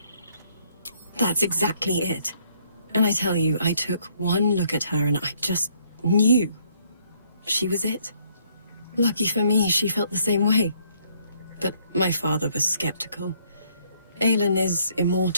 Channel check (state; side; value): inverted; both; correlation -0.67